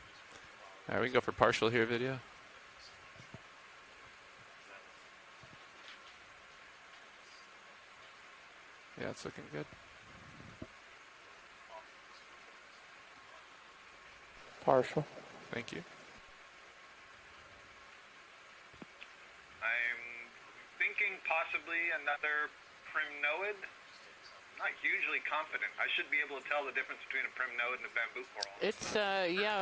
All right, we can go for partial here video. Yeah, it's looking good. Partial. Thank you. I'm thinking possibly another primnoid. Not hugely confident. I should be able to tell the difference between a primnoid and a bamboo coral. It's,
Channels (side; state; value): both; identical; correlation 1.00